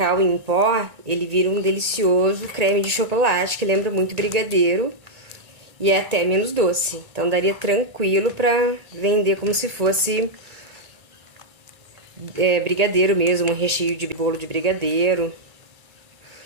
em pó, ele vira um delicioso creme de chocolate que lembra muito brigadeiro. E é até menos doce. Então, daria tranquilo pra vender como se fosse brigadeiro mesmo, um recheio de bolo de brigadeiro.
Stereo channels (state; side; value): late; left; 2.3 ms